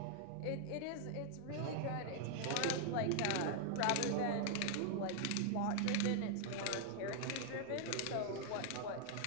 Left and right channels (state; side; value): different; both; correlation 0.00